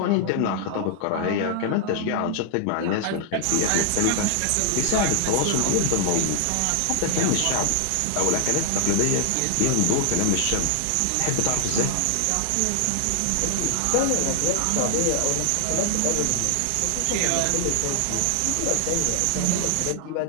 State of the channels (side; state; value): both; different; correlation 0.00